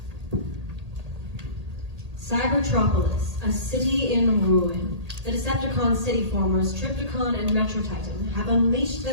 Cybertropolis, a city in ruin. The Decepticon city formers, Trypticon and Metro Titan, have unleashed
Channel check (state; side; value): late; left; 1.8 ms